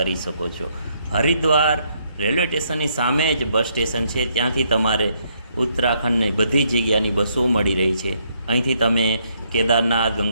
શકો છો. હરિદ્વાર રેલવે સ્ટેશનની સામે જ બસ સ્ટેશન છે. ત્યાંથી તમારે ઉત્તરાખંડની બધી જગ્યાની બસો મળી રહી છે. અહીંથી તમે કેદારનાથ,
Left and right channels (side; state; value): both; inverted; correlation -0.72